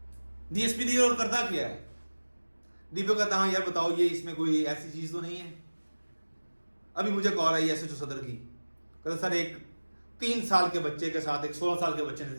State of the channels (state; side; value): inverted; both; correlation -1.00